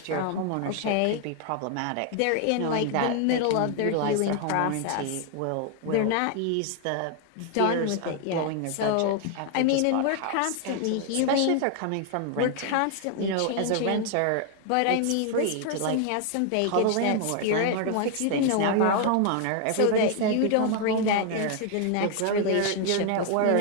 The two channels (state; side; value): different; both; correlation 0.00